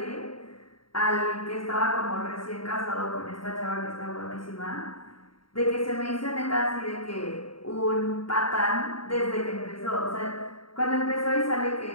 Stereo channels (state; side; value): late; right; 0.73 ms